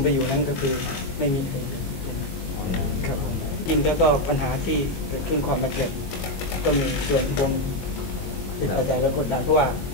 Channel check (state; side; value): late; right; 22 ms